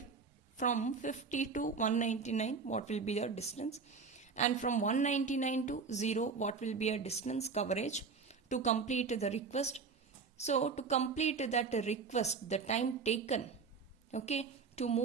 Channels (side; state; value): left; quieter; 5.1 dB